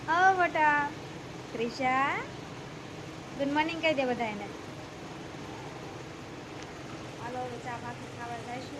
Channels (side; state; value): both; identical; correlation 1.00